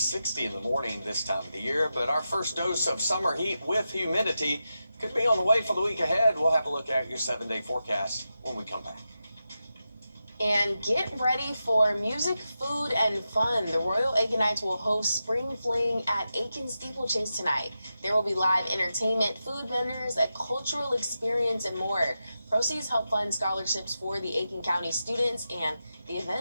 in the morning this time of the year. But our first dose of summer heat with humidity could be on the way for the week ahead. We'll have a look at your 7-day forecast when we come back. And get ready for music, food, and fun. The Royal Aikenites will host Spring Fling at Aiken Steeplechase tonight. There will be live entertainment, food vendors, a cultural experience, and more. Proceeds help fund scholarships for the Aiken County students, and the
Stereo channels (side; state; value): both; inverted; correlation -0.90